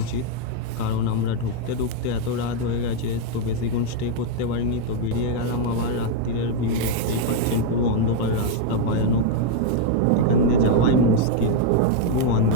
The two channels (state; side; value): different; both; correlation 0.00